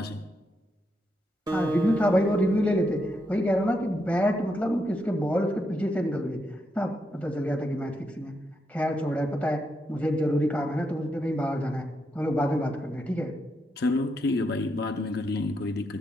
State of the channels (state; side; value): normal; both; correlation 0.81